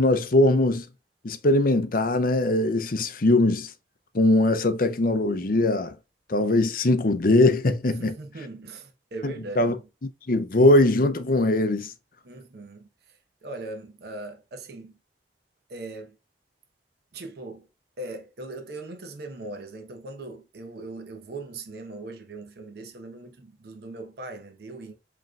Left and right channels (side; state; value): both; normal; correlation 0.42